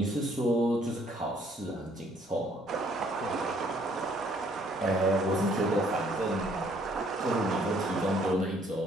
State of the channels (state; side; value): normal; both; correlation 0.63